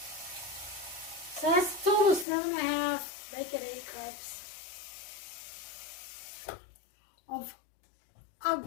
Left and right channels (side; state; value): right; drops out; at 2.2 s